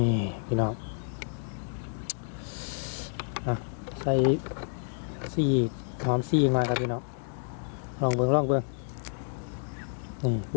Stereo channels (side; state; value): right; silent; digital silence